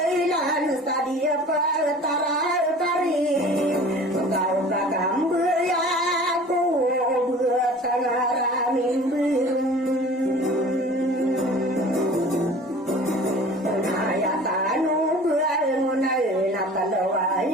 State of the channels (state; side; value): normal; both; correlation 0.44